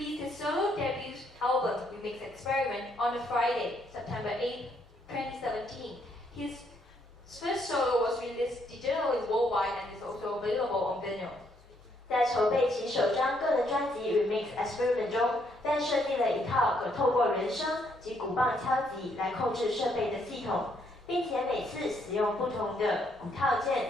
his solo debut album, Remix Experiment, on a Friday, September 8, 2017. His first solo was released digitally worldwide and is also available on vinyl. 在筹备其首张个人专辑《Remix Experiment》中 ，Ben 设计了一套可透过人声及鼓棒敲击来控制设备的系统，并且每次使用不同的鼓套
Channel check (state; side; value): normal; both; correlation 0.72